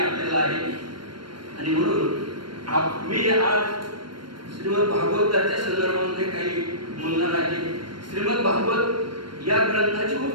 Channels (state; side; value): late; left; 0.72 ms